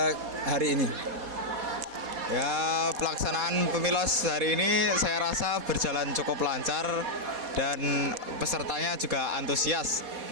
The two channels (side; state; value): left; late; 4.2 ms